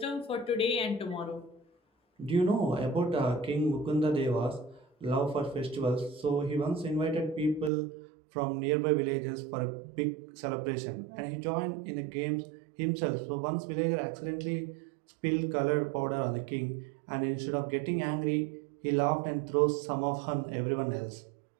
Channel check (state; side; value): drops out; left; at 7.7 s